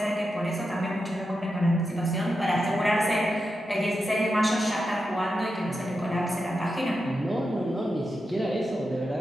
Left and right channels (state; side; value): normal; both; correlation 0.88